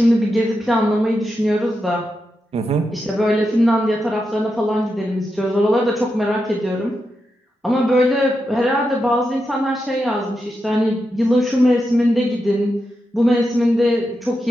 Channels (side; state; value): both; normal; correlation 0.87